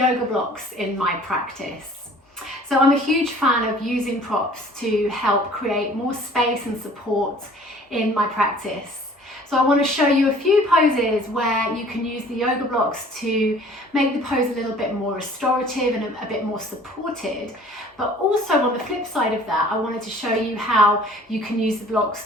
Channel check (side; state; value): both; normal; correlation 0.51